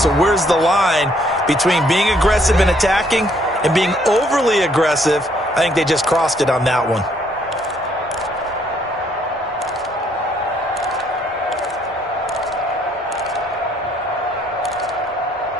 where's the line between being aggressive and attacking and being overly aggressive? I think they just crossed it on that one.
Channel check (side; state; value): both; normal; correlation 0.67